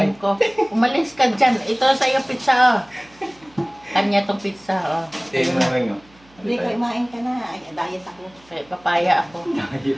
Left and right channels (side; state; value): right; noise; hum, 29 dB below the sound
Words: ko. Umalis ka dyan. Ito sa iyo pizza. Oh. Kanya tong pizza. Oh. Tingin mo rin, Hindi, kumain ka na. Ay, diet ako. Papaya ako.